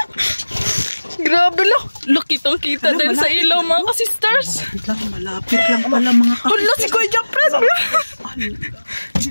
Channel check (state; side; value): inverted; both; correlation -1.00